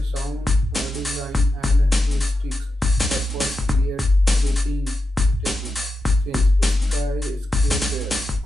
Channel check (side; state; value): both; normal; correlation 0.89